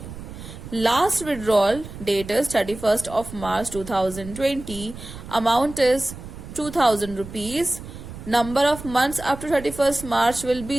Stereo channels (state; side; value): noise; right; rumble, 13 dB below the sound